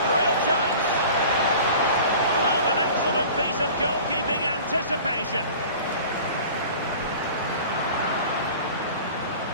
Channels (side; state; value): both; inverted; correlation -0.42